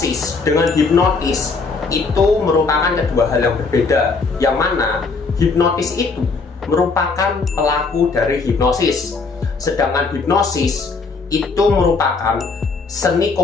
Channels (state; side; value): quieter; right; 4.3 dB